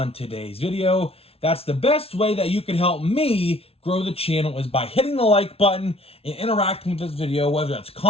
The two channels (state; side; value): late; right; 0.28 ms